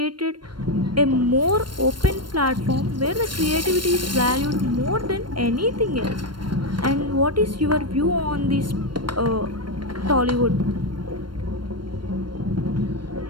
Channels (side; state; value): left; late; 0.72 ms